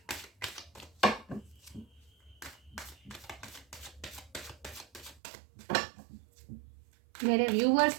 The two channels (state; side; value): drops out; left; at 5.2 s